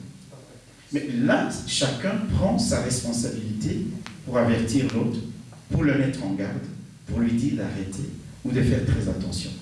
Mais là, chacun prend sa responsabilité pour avertir l'autre, pour le mettre en garde, pour lui dire d'arrêter ou de faire très attention.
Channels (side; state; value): both; identical; correlation 1.00